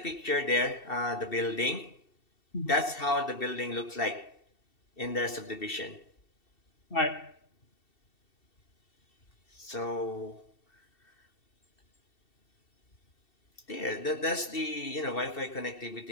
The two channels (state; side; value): late; right; 2.7 ms